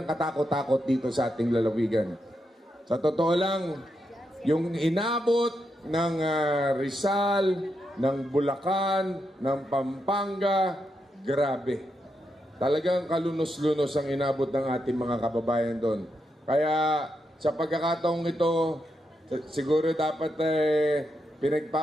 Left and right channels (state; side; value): normal; both; correlation 0.83